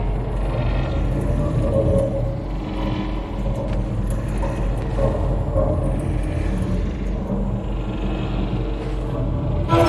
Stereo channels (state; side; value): identical; both; correlation 1.00